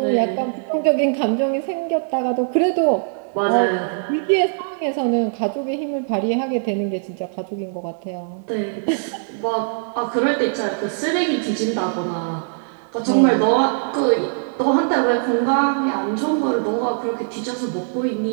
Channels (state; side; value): silent; left; 60 dB below the other